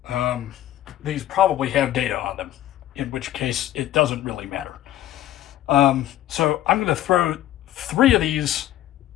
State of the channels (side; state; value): right; quieter; 13.3 dB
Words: These probably have data on them, in which case it doesn't really matter. So I'm going to throw 3 of these.